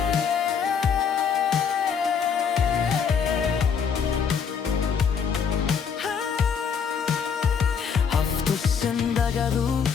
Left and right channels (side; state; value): right; quieter; 6.7 dB